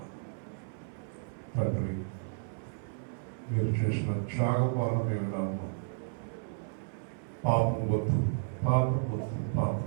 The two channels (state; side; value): silent; left; 56 dB below the other